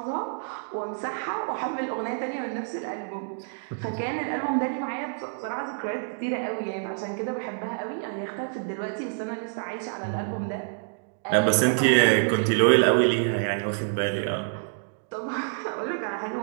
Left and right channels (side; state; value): left; silent; digital silence